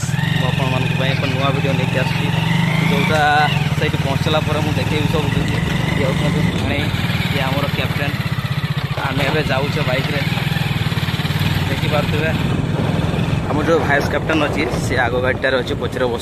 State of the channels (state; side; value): identical; both; correlation 1.00